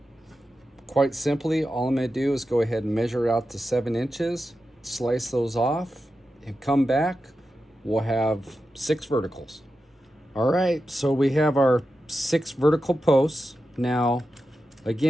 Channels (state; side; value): normal; both; correlation 0.91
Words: quite simply, all I'm going to do is go ahead and measure it out to 7 inches, slice those off, and come back. We'll have 6 verticals. All right, so we have our 6 vertical posts. Now,